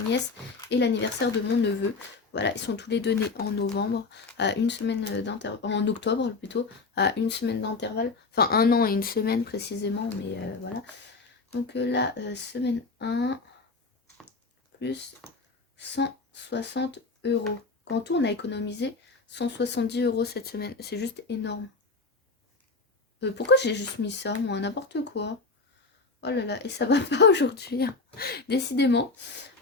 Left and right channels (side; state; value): right; quieter; 3.9 dB